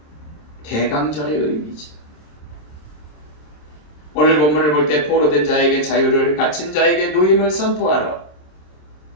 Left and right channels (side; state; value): right; late; 26 ms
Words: 대강절의 의미죠. 오늘 본문을 볼 때 포로된 자에게 자유를, 갇힌 자에게 노임을 선포하러